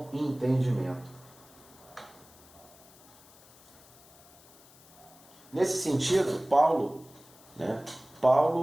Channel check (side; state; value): left; noise; hiss, 24 dB below the sound